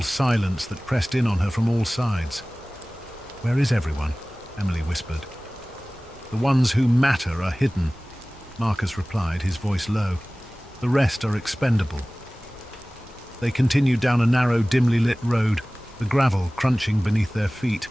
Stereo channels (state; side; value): normal; both; correlation 0.98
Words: silence that pressed in on her from all sides. "Where is everyone?" Emily whispered. "The ones who matter are hidden," Marcus replied, his voice low. "The rest are expendable." They continued down a narrow, dimly lit road, the gravel crunching beneath their feet.